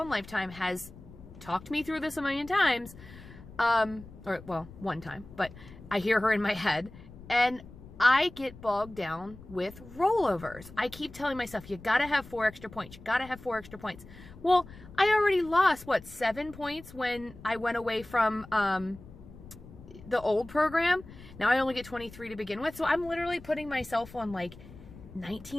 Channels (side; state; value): left; noise; rumble, 18 dB below the sound